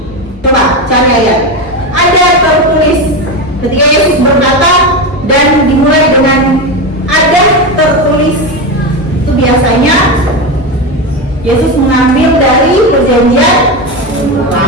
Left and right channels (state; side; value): normal; both; correlation 0.16